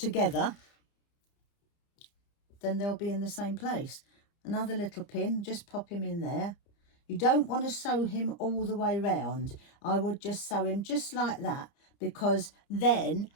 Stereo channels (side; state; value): right; late; 30 ms